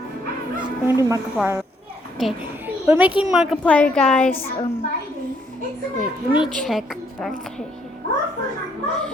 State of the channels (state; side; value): normal; both; correlation 0.69